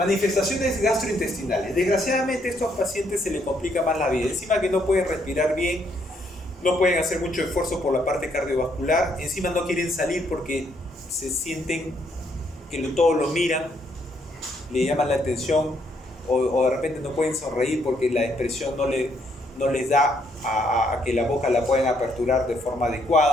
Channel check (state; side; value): normal; both; correlation 0.71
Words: gastrointestinales. Desgraciadamente a estos pacientes se les complica más la vida. Encima que no pueden respirar bien, no pueden hacer mucho esfuerzo por la parte cardiovascular, encima no quieren salir porque se sienten que todos lo miran, le llaman la atención, o de repente no pueden sonreír porque la expresión no les da a que la boca la puedan aperturar de forma